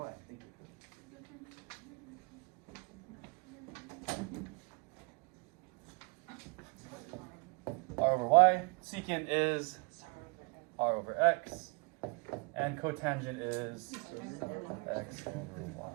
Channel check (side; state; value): left; quieter; 32.0 dB